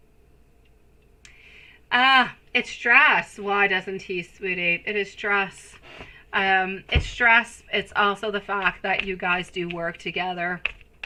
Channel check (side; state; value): both; identical; correlation 1.00